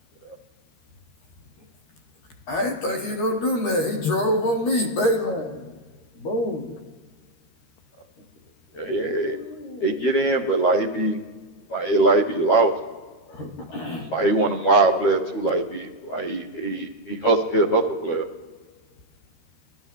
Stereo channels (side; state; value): right; late; 13 ms